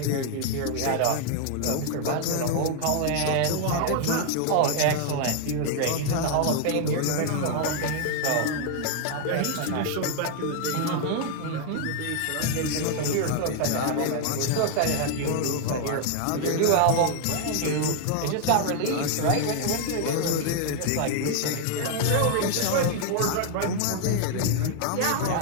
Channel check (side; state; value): both; different; correlation 0.00